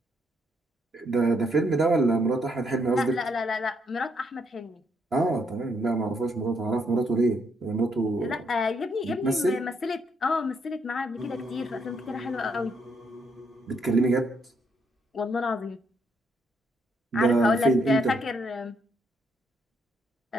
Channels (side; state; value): both; normal; correlation 0.74